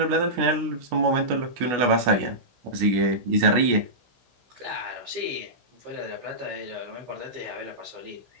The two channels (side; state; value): left; late; 16 ms